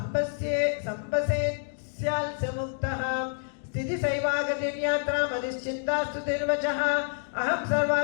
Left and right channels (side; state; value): right; silent; digital silence